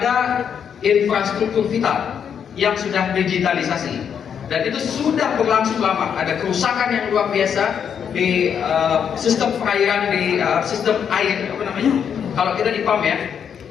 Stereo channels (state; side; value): quieter; right; 7.8 dB